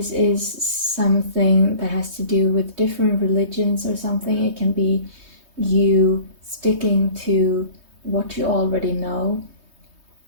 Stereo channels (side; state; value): left; late; 3.2 ms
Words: is something that has to do with different religions or something, it can be you sticking to what you already know.